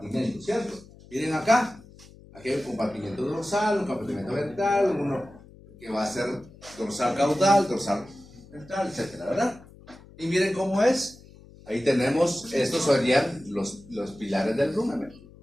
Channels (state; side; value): noise; left; hum, 22 dB below the sound